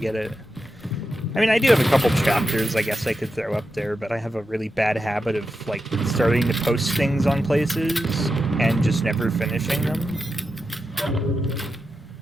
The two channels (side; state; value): both; normal; correlation 0.89